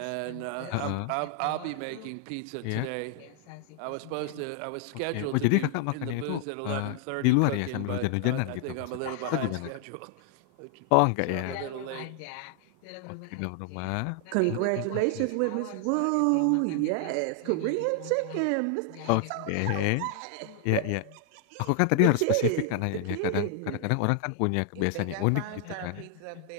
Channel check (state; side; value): different; both; correlation 0.00